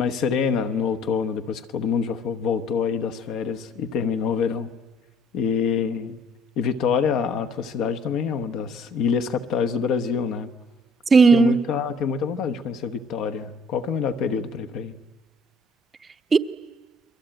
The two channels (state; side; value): normal; both; correlation 0.58